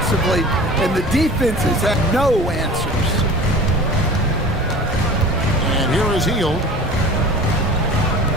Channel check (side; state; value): both; normal; correlation 0.40